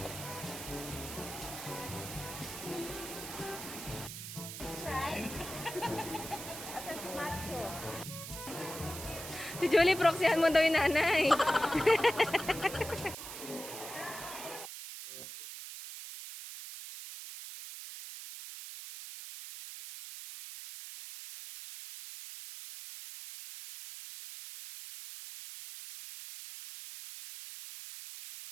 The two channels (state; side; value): noise; right; hiss, 9 dB below the sound